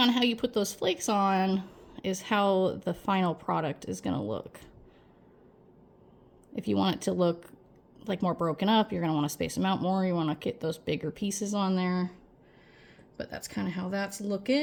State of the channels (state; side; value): identical; both; correlation 1.00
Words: how you put those flakes on is how the final product is gonna look. If you want it to look like more broken up, you're going to want to space them out more. You want to get those bigger pieces on there. But that's kind of how that's